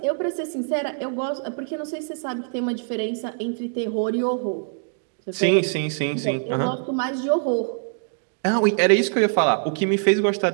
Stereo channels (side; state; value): left; silent; digital silence